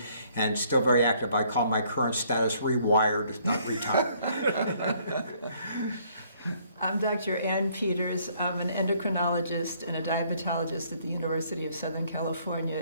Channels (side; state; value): both; inverted; correlation -0.64